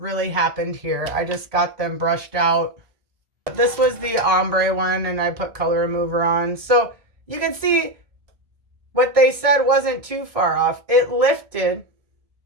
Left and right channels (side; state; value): left; late; 1.6 ms